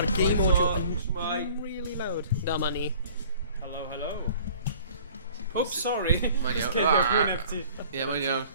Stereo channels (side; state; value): both; inverted; correlation -0.51